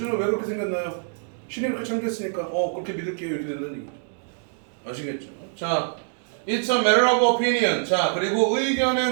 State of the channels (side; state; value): left; silent; digital silence